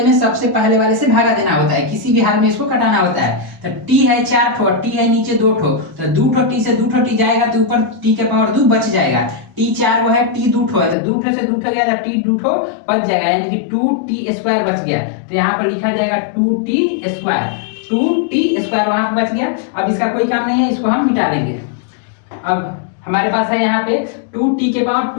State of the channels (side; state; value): right; drops out; at 11.0 s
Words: से भागा देना होता है, किसी भी हाल में इसको कटाना होता है। तो t है 4 ठो, t है नीचे 2 ठो, तो 2 ठो t से 2 ठो t जाएगा तो ऊपर t के पावर 2 बच जाएगा। t 4 वो है, t 2 ठो है, तो 2 ठो से 2 ठो गया तो t 2 ठो बच जाएगा, यानी कि 2t स्क्वायर बच गया। तो यहाँ पर लिखा जाएगा 2t स्क्वायर वहां पर बच गया। अब इसका कोई काम नहीं है, इसको हम मिटा लेंगे। अब हमारे पास है यहाँ पे 2t के पावर